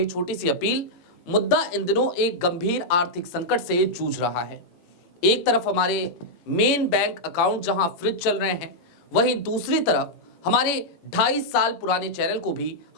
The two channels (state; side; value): late; right; 18 ms